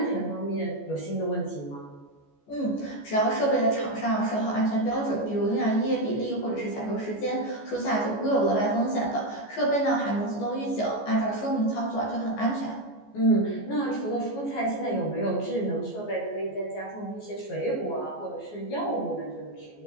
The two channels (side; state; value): right; late; 14 ms